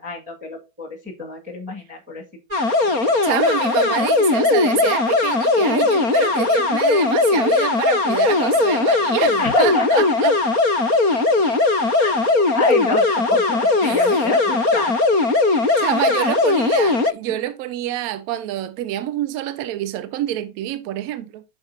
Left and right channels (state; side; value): late; left; 4.3 ms